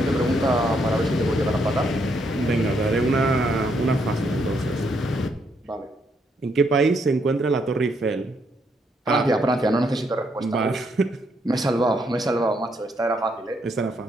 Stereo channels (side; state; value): both; normal; correlation 0.75